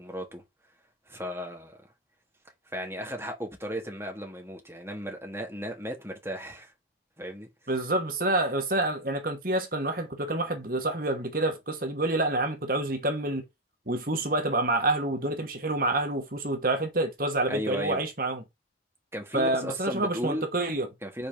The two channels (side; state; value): both; normal; correlation 0.05